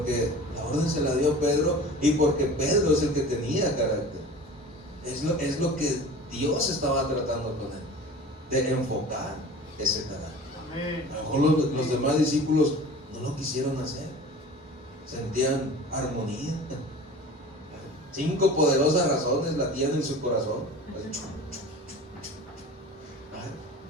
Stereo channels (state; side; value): normal; both; correlation 0.39